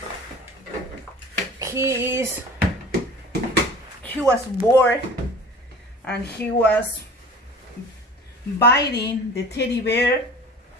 He was bored and he was biting the teddy bear,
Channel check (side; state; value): both; normal; correlation 0.42